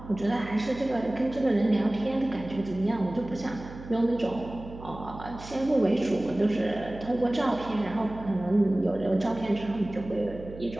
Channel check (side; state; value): right; noise; hum, 14 dB below the sound